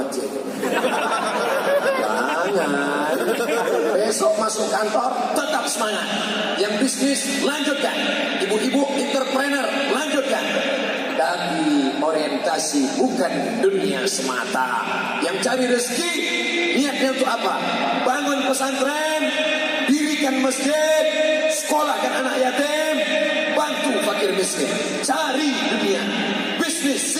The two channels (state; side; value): identical; both; correlation 1.00